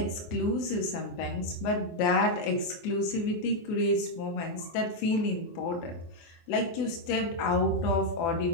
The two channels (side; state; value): right; late; 24 ms